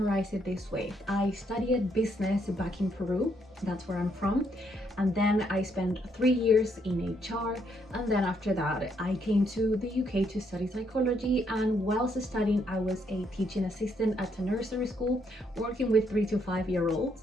it this way. I studied business back in Peru, that's where I'm from, and then I spent 3 years in HR, and then after that I came to the UK to study psychology, and whilst studying I was a teaching assistant at a nursery school working with 3 to 5 year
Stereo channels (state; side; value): normal; both; correlation 0.74